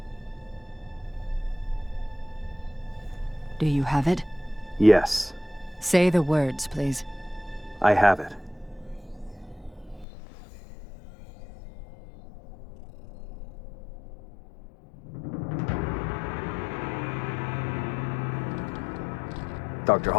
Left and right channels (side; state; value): right; drops out; at 10.1 s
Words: Do you have it? Yes. Say the words, please. I have it. Dr.